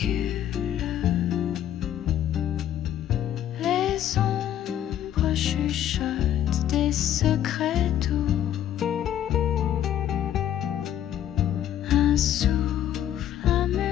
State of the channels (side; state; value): right; quieter; 11.2 dB